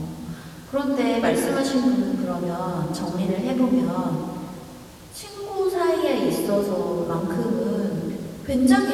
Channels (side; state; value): both; identical; correlation 1.00